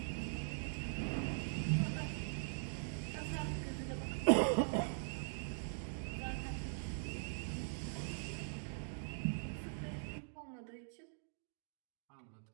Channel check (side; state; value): left; silent; digital silence